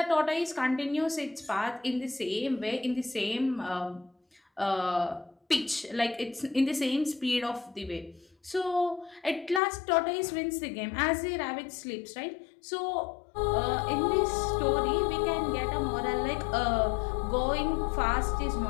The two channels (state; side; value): drops out; right; at 9.6 s